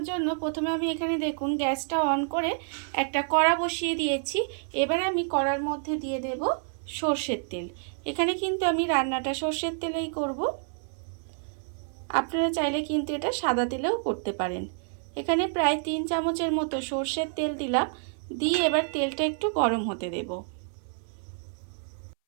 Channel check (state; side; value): silent; left; 59 dB below the other